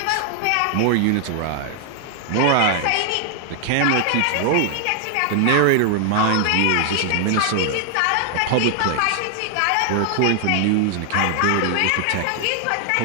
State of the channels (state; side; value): different; both; correlation 0.00